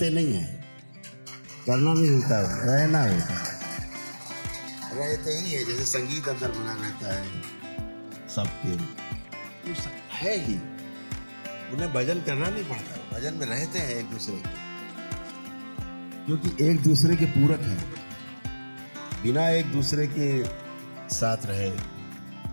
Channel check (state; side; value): inverted; both; correlation -1.00